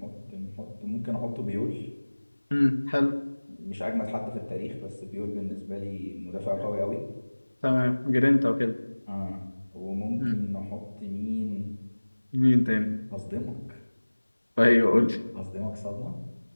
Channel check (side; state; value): both; inverted; correlation -1.00